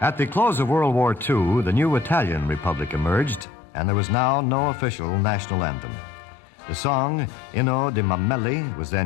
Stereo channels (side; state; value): right; drops out; at 3.5 s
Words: At the close of World War II, the new Italian Republic emerged, and there was now no official national anthem. The song Inno di Mameli was